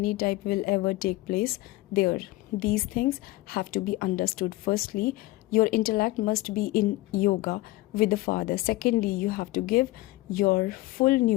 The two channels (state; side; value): quieter; right; 18.8 dB